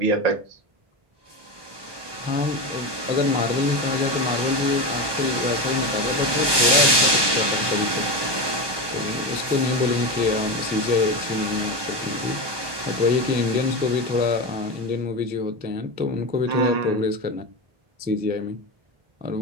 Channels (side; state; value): left; late; 1.2 ms